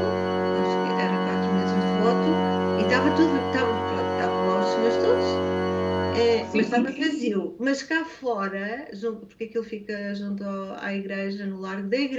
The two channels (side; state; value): both; identical; correlation 1.00